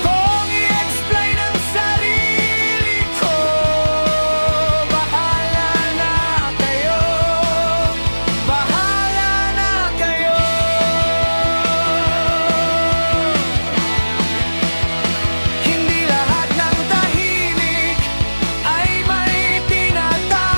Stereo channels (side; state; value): both; inverted; correlation -1.00